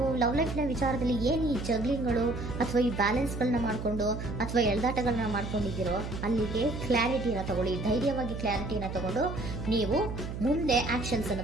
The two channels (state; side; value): noise; right; hum, 6 dB below the sound